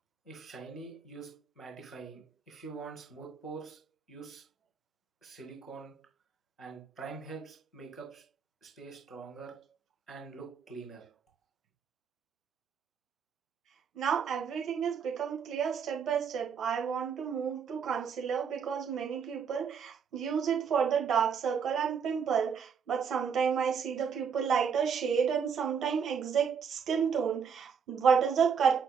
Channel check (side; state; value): left; quieter; 6.7 dB